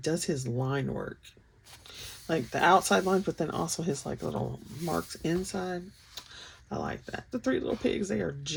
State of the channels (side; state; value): both; identical; correlation 1.00